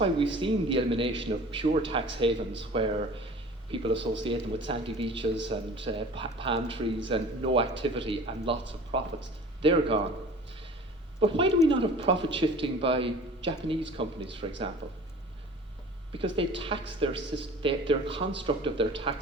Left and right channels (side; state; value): both; normal; correlation 0.43